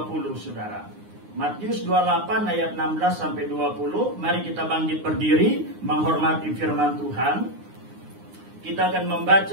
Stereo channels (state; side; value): late; left; 9.7 ms